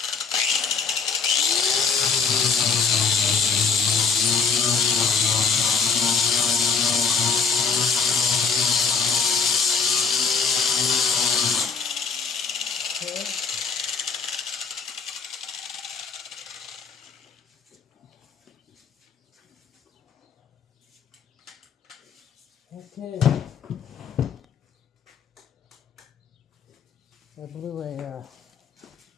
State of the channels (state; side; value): quieter; right; 5.5 dB